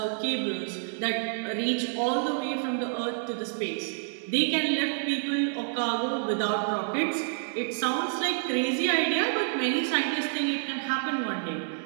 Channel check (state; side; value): silent; left; digital silence